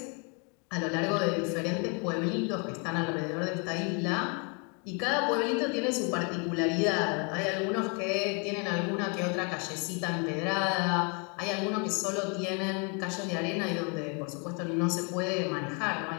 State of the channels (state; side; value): quieter; right; 34.8 dB